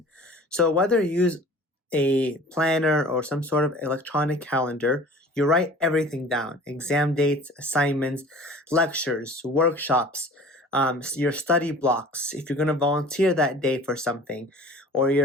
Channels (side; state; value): both; normal; correlation 0.45